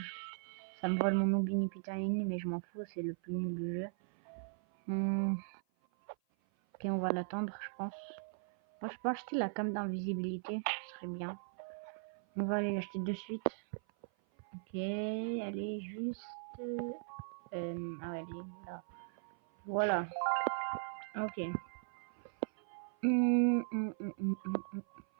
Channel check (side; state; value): left; silent; 52 dB below the other